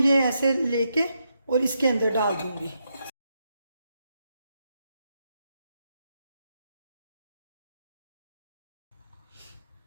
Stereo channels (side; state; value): both; inverted; correlation -0.82